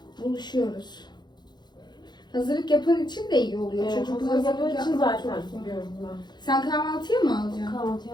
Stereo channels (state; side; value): late; right; 0.21 ms